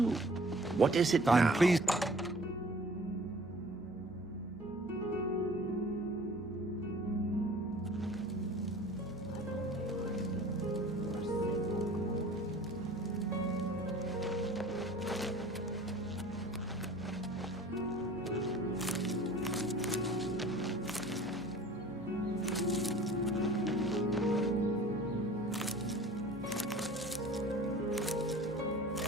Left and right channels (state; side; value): noise; left; hum, 20 dB below the sound